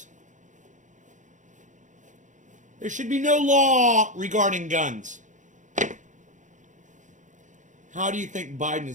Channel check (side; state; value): left; late; 0.36 ms